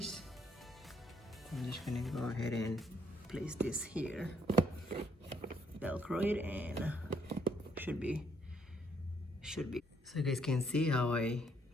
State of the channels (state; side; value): normal; both; correlation 0.70